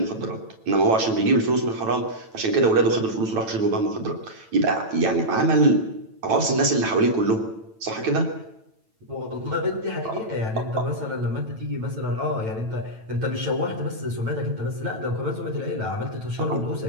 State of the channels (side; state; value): left; late; 9.1 ms